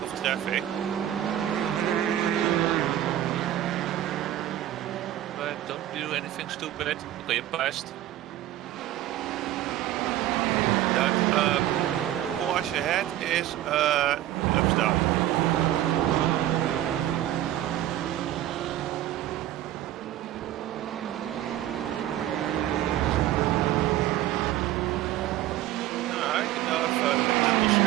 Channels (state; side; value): quieter; left; 13.2 dB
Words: traffic. But don't do anything stupid. Okay, you passed. That Porsche ahead is laps down.